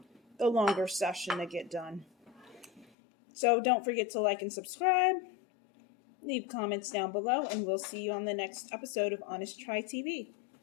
longer session to get done. So don't forget to like and subscribe. Leave comments down below, and we'll see you on the next episode of Honest Try TV.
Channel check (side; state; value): right; drops out; at 2.9 s